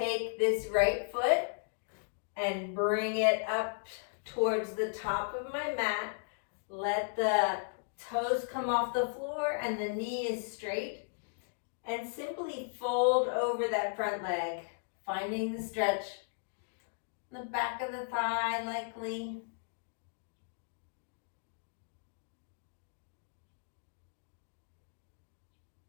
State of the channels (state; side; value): silent; right; digital silence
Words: this right foot and bring it up towards the top of my mat. Let the toes come off the floor and the knee is straight. And simply fold over that front leg, finding the stretch. The back of the thigh likely.